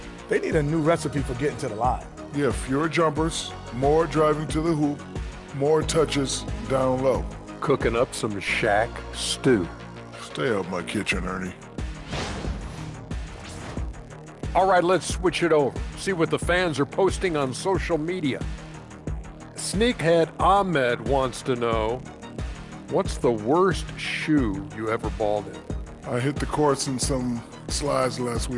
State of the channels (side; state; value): both; identical; correlation 1.00